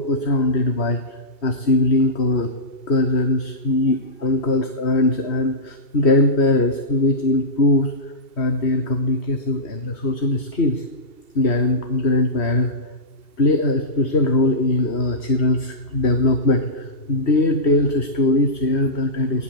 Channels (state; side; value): late; right; 2.7 ms